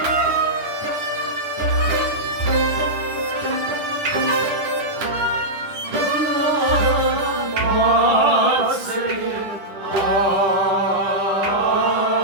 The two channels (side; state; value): left; late; 10 ms